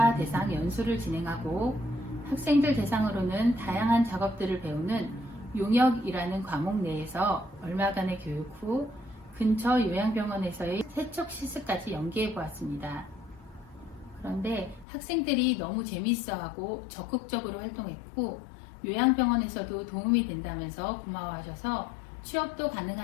대상 연수를 진행하고 학생들 대상으로는 다양한 작업들을 배우는 용역이라는 과목 내에서 얼마간의 교육 후 근처 요양병원에서의 세척 실습까지 연계해 보았습니다. 그런데 학생들이 너무 재미있어하고 적극적으로 활동했고 요양병원에서도 도움이 된다면서 고마워하셔서 취업도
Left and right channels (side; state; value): right; drops out; at 14.9 s